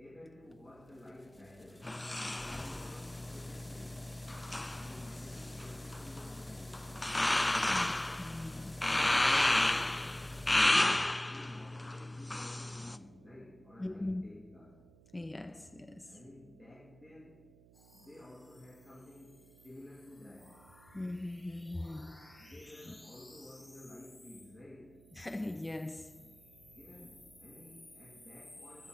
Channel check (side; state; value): right; noise; hum, 24 dB below the sound